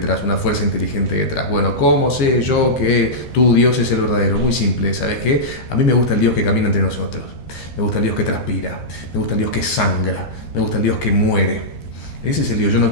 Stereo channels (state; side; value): late; right; 13 ms